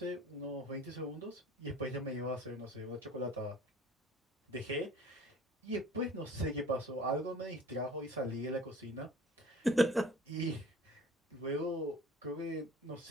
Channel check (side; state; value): both; normal; correlation 0.46